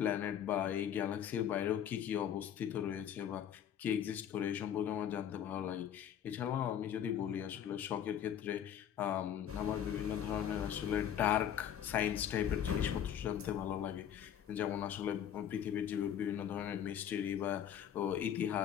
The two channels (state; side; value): quieter; right; 9.5 dB